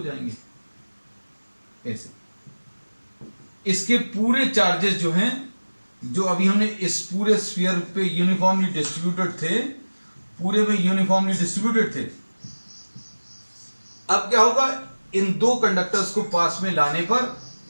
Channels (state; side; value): inverted; both; correlation -1.00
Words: जाएंगे, ऐसे। इसके पूरे चार्जेस जो हैं, जो अभी हमने इस पूरे स्फीयर पे यूनिफॉर्मली डिस्ट्रीब्यूटेड थे, पूरे में यूनिफॉर्मली डिस्ट्रीब्यूटेड थे, अब क्या होगा, इन 2 कंडक्टर्स को पास में लाने पर